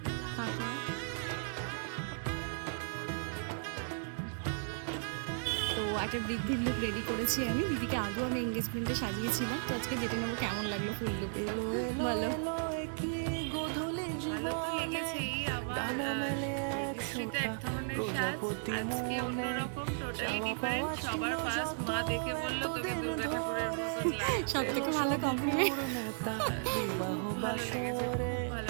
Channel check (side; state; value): left; silent; digital silence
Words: তো একটা বৃদ্ধির লুক রেডি করেছি আমি। দিদিকে আগেও আমি এঙ্গেজমেন্টে সাজিয়েছিলাম, তো আজকে যেটা নেবো কেমন লাগলো ফুল লুক বলো। সব থেকে ভালো কমপ্লিমেন্ট।